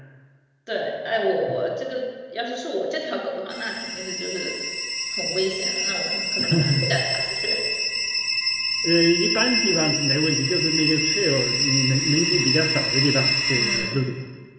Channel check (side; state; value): both; identical; correlation 1.00